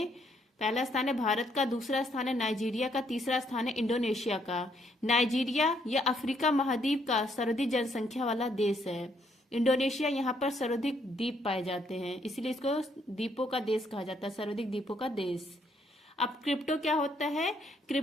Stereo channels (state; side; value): normal; both; correlation 0.71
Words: पहला स्थान है भारत का, दूसरा स्थान है नाइजीरिया का, तीसरा स्थान है इंडोनेशिया का। नाइजीरिया या अफ्रीका महाद्वीप का सर्वाधिक जनसंख्या वाला देश है। इंडोनेशिया यहाँ पर सर्वाधिक द्वीप पाए जाते हैं, इसलिए इसको द्वीपों का देश कहा जाता है, सर्वाधिक द्वीपों का देश। अब क्रिप्टो क्या होता है?